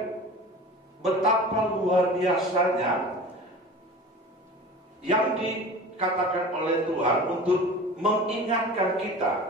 betapa luar biasanya yang dikatakan oleh Tuhan untuk mengingatkan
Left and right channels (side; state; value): both; normal; correlation 0.38